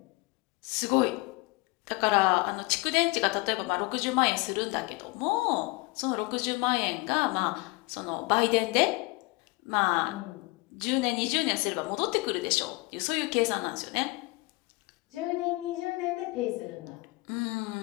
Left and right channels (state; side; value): quieter; right; 24.4 dB